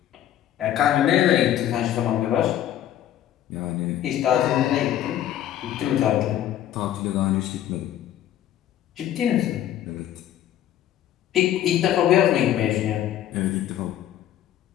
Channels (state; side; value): quieter; right; 11.6 dB